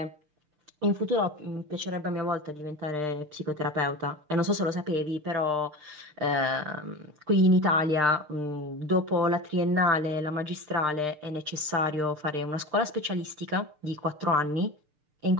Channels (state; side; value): late; left; 6.6 ms